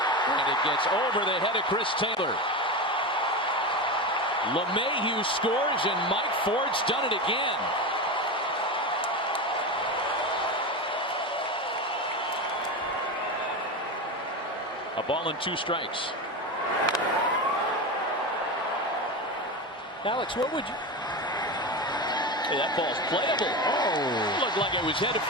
And it gets over the head of Chris Taylor. LeMahieu scores, and Mike Ford's done it again. A ball and 2 strikes. Alex, what would you... Hey, that ball's playable. Oh. Looked like it was headed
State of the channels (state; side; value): normal; both; correlation 0.21